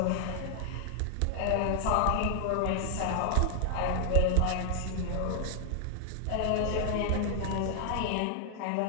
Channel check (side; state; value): both; different; correlation 0.00